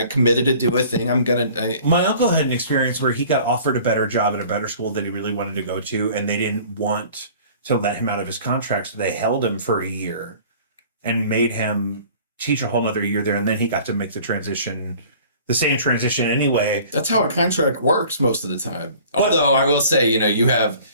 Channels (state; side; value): inverted; both; correlation -0.48